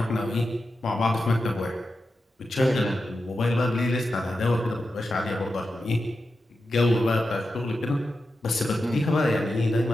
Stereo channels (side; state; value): both; normal; correlation 0.90